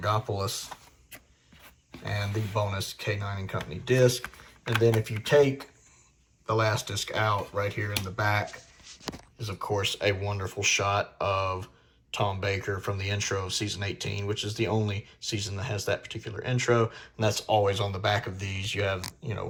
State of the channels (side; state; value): both; identical; correlation 1.00